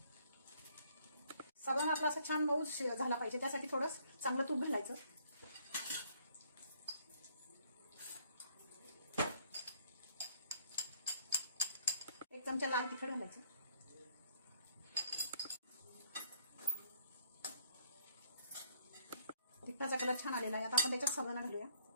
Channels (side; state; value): both; inverted; correlation -0.63